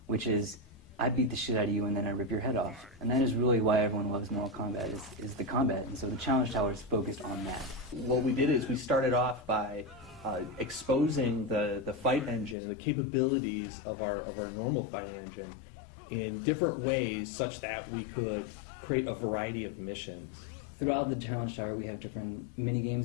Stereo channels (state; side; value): drops out; right; at 12.6 s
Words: which is, I beat the shit out of you and then I rip your head off. And that is really why everyone loves Mortal Kombat, is the combat. And so the Challenge Tower is focused on that. What we did is we started off by exposing the fight engine and the capabilities of our normal fight engine in different ways such that we could create a variety of missions. Throughout the Challenge Tower, we have different mini games